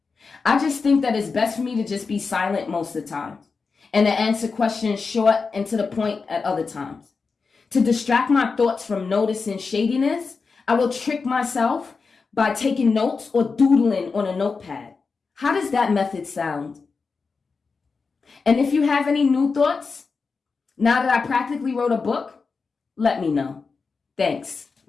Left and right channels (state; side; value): quieter; right; 4.7 dB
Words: I just think that it's best for me to just be silent most of the time and to answer questions short and to the point at other times. To distract my thoughts from noticing shadiness, I will trick myself by taking notes or doodling on a notepad. How does that method sound? And if you have any new thoughts, now that I practically wrote a book, let me know. Thanks.